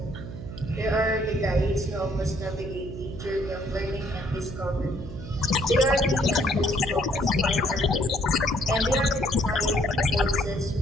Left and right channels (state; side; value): noise; right; hum, 10 dB below the sound